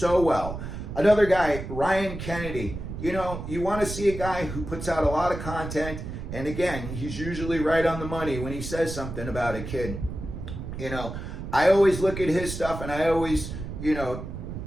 well. Another guy, Ryan Kennedy, you want to see a guy who puts out a lot of content, and again, he's usually right on the money when he says something about a kid. I always look at his stuff and I always,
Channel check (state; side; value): noise; right; rumble, 8 dB below the sound